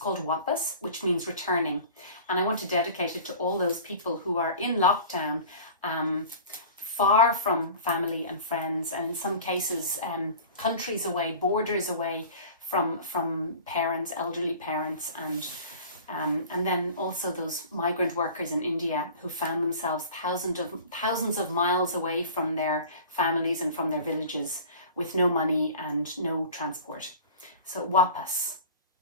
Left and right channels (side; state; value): both; inverted; correlation -0.40